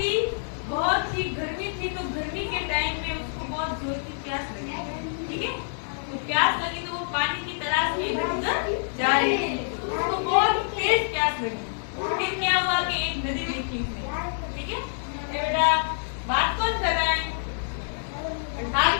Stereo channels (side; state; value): right; silent; 60 dB below the other